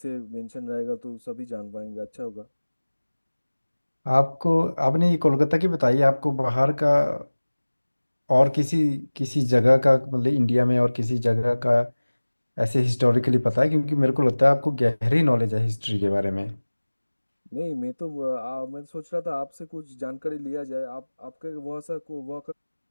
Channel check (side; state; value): both; inverted; correlation -1.00